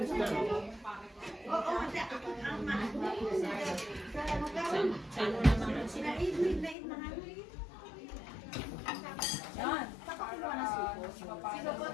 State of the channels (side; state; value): right; drops out; at 6.8 s